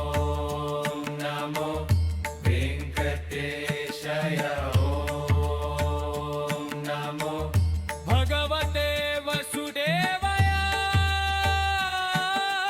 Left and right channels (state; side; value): identical; both; correlation 1.00